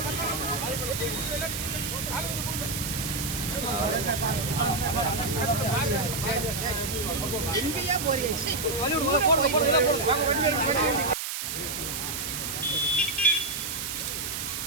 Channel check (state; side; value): noise; right; hiss, 4 dB below the sound